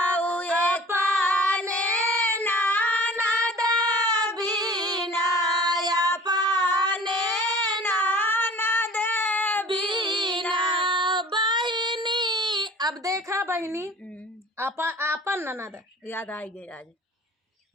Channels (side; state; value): both; normal; correlation 0.45